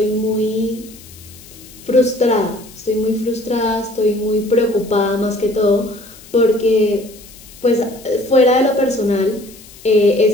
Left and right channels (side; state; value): left; noise; hiss, 21 dB below the sound